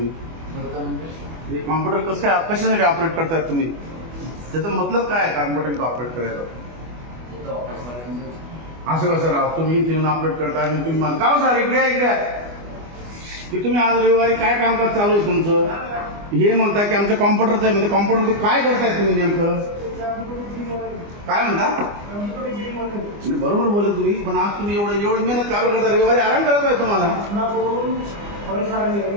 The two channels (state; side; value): late; left; 25 ms